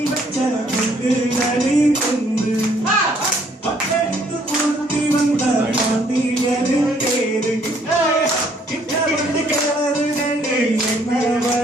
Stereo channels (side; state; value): both; normal; correlation 0.64